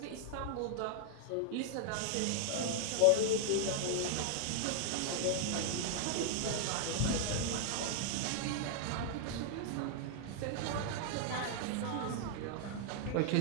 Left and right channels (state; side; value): different; both; correlation 0.00